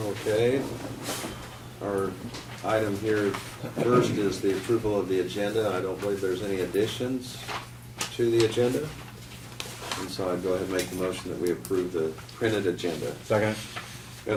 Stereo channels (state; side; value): identical; both; correlation 1.00